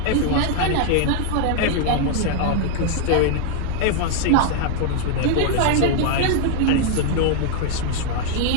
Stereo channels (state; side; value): different; both; correlation 0.00